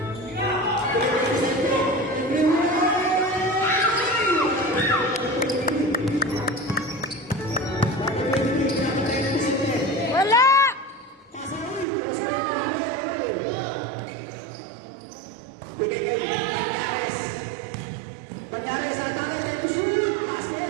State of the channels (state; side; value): drops out; left; at 11.9 s